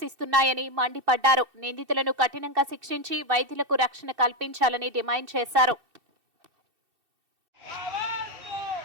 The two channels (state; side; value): late; left; 2.6 ms